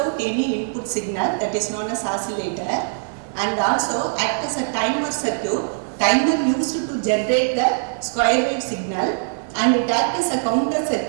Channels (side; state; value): left; silent; digital silence